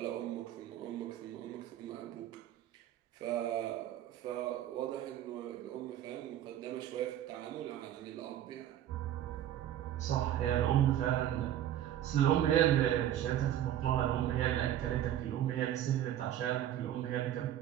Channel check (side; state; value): left; quieter; 11.6 dB